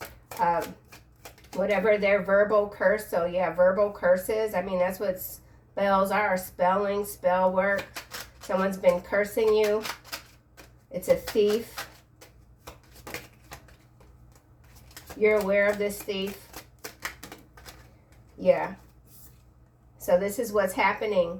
Whatever their verbal curse. So yeah, verbal curses. I mean, that's what spells are. Spelling, spell work. Someone's been cursing you. It's a thief. You're aware of this thief. Yeah. So this is what's happening.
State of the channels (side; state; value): both; identical; correlation 1.00